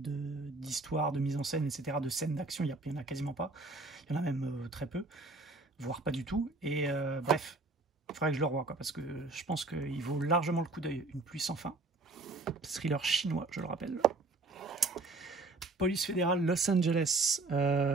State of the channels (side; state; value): left; quieter; 3.3 dB